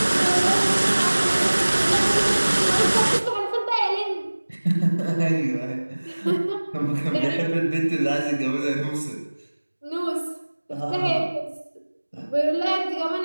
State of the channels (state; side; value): inverted; both; correlation -1.00